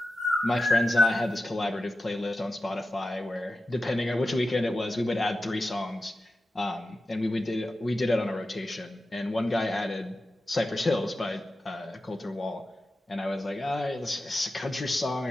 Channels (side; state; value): both; normal; correlation 0.92